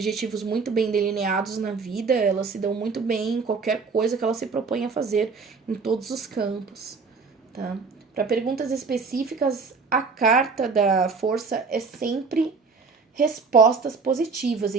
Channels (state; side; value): quieter; left; 4.7 dB